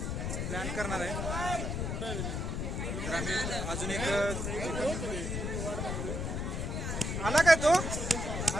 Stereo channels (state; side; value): noise; left; rumble, 2 dB below the sound